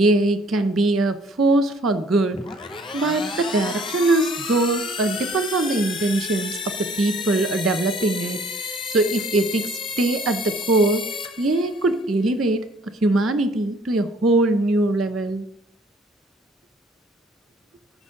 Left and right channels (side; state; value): both; normal; correlation 0.58